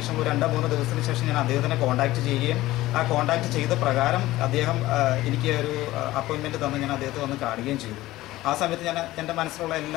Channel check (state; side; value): quieter; right; 16.9 dB